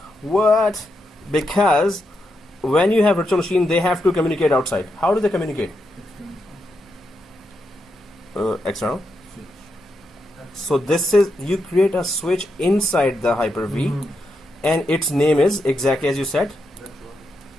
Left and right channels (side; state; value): both; normal; correlation 0.84